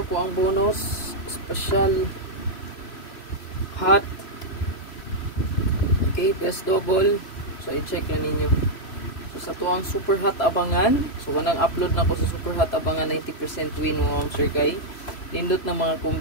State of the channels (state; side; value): late; right; 3.0 ms